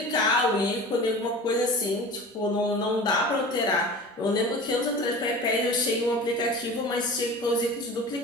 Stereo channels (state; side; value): normal; both; correlation 0.36